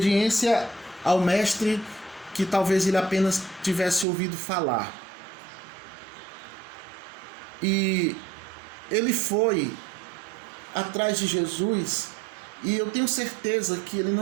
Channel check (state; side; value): drops out; left; at 4.0 s